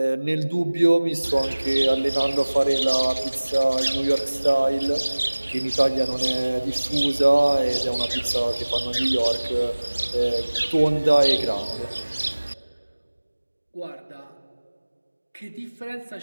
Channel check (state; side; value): inverted; both; correlation -1.00